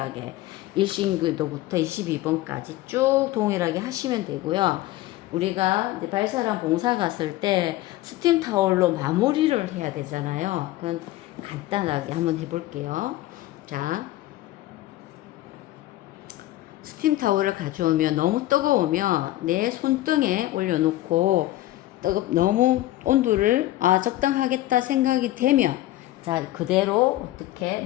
1신교도부터 22번까지 쭉 동일하게 하시면 되고요. 우리가 이제 발사랑 봉사 갔을 때 스팀 타올로 마무리를 해야 되잖아요. 그건 간단하게 한번 해볼게요. 자, 스팀 타올을 가져오면 너무 뜨거우면 내 손등에 올려놓고 너무 온도를 적당하겠다 생각이 되면 자, 그대로 어떻게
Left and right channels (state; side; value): quieter; right; 15.9 dB